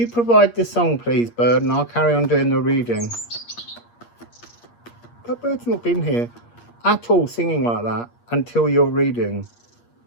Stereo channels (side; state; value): right; late; 8.5 ms